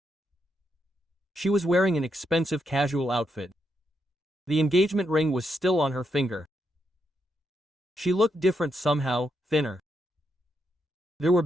She was wearing an expensive casual outfit. The engagement ring was still on her finger. She looked different somehow, thinner. There were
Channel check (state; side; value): normal; both; correlation 0.81